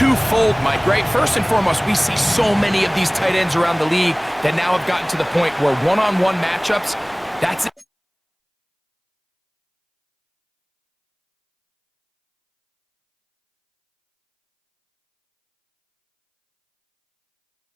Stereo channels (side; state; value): both; identical; correlation 1.00